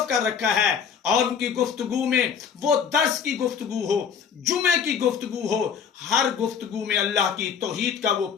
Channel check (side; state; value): right; quieter; 7.1 dB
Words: کر رکھا ہے، اور ان کی گفتگو میں وہ درس کی گفتگو ہو، جمعے کی گفتگو ہو، ہر گفتگو میں اللہ کی توحید کا وہ